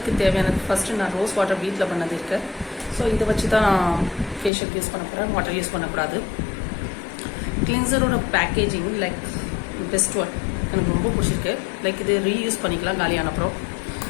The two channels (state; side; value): drops out; right; at 4.5 s